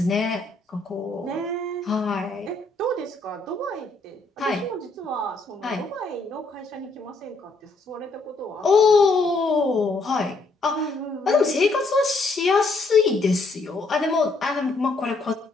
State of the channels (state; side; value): quieter; right; 3.4 dB